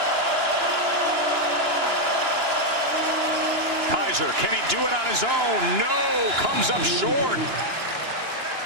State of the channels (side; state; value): left; late; 2.9 ms